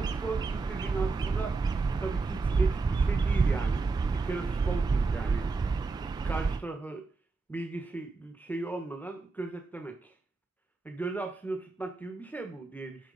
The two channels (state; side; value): quieter; left; 4.0 dB